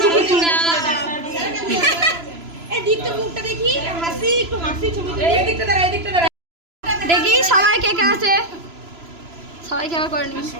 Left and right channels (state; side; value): late; left; 3.0 ms